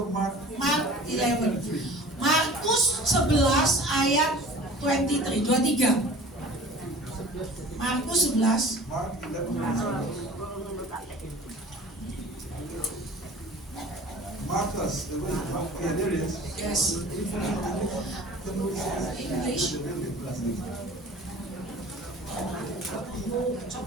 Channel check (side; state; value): both; normal; correlation 0.44